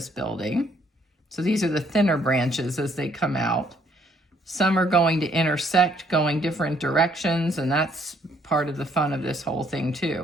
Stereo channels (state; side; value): normal; both; correlation 0.66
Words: building. So these are the thinner branches as they come out. Some are going to intersect, going different directions, and that's part of the fun of this whole thing